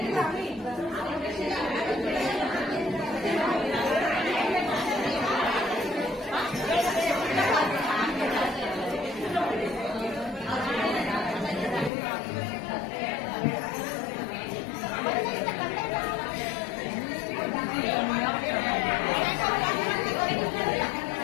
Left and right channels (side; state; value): right; drops out; at 11.9 s